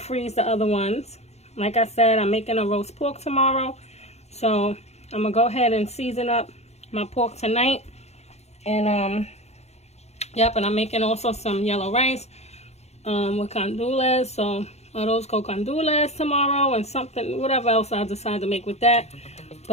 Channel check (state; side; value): late; right; 0.31 ms